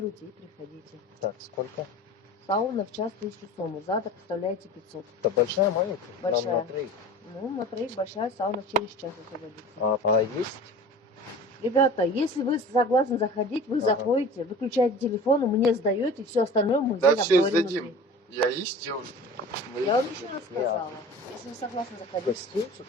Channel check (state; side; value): normal; both; correlation 0.39